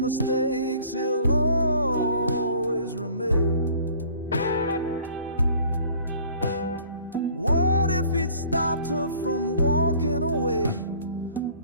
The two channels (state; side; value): inverted; both; correlation -0.53